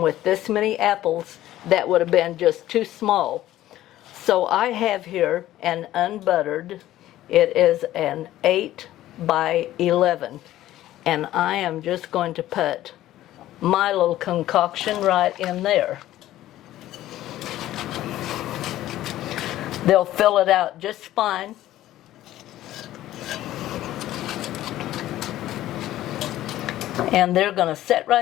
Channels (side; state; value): right; quieter; 14.2 dB